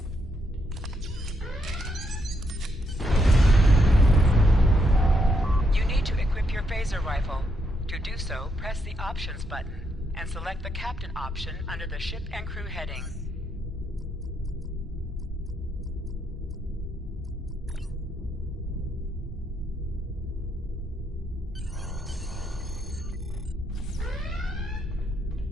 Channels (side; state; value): both; normal; correlation 0.77